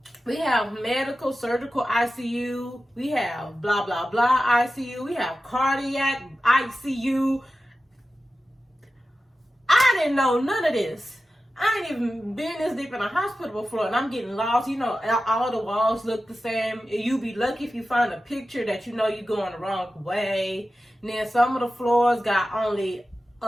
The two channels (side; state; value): both; normal; correlation 0.94